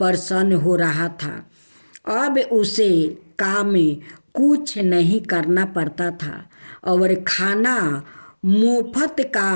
हो रहा था। अब उसे काम में कुछ नहीं करना पड़ता था और खाना मुफ्त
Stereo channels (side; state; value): both; inverted; correlation -1.00